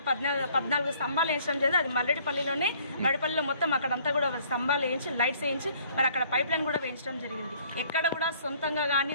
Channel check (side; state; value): both; inverted; correlation -0.59